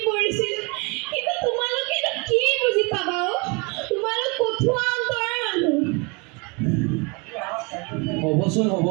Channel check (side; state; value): left; quieter; 30.0 dB